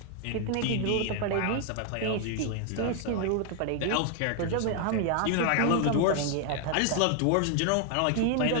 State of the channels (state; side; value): different; both; correlation 0.00